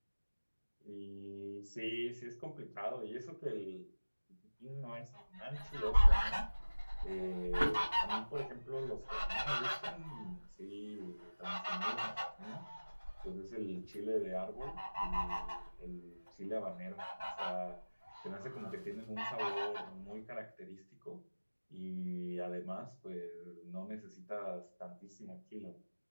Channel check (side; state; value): both; inverted; correlation -1.00